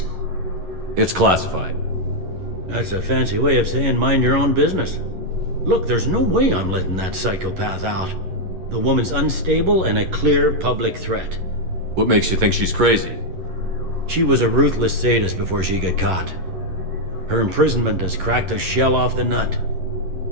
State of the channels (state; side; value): late; left; 11 ms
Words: It's classified. That's a fancy way of saying mind your own business. Look, there's no way I'm letting that psychopath out. The woman's unstable and a clear public threat. What makes you think she's crazy? She was a ruthless sadist before she got caught. Her imprisonment has cracked the shell off the nut.